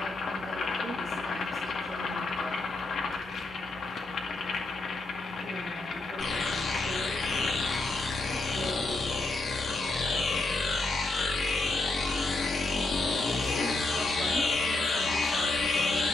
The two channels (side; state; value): right; quieter; 3.1 dB